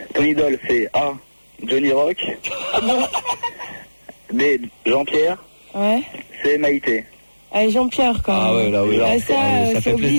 Ton idole, c'est A. Johnny Rock. B. Jean-Pierre. Ouais. C. Maïté. Allez, Jean-Pierre, quoi. Ah ouais, là, oui. Ah, là, ça, ça c'est fait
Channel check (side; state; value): both; inverted; correlation -1.00